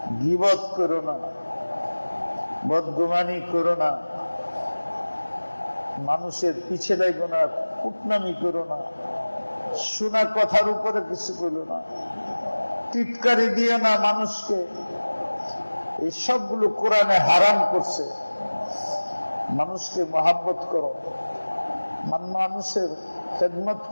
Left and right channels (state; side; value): inverted; both; correlation -1.00